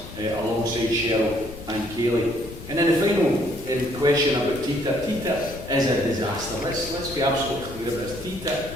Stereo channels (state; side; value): noise; left; rumble, 14 dB below the sound